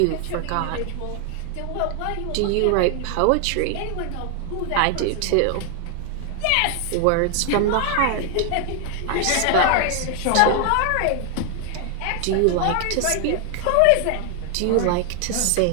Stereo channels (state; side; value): different; both; correlation 0.00